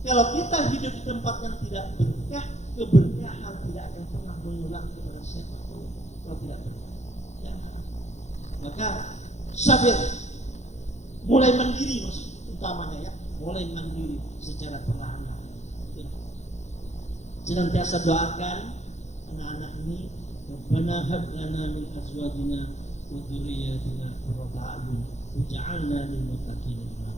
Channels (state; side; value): late; right; 0.33 ms